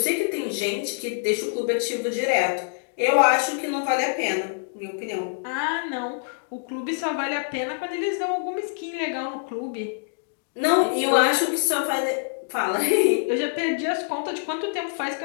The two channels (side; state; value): right; silent; digital silence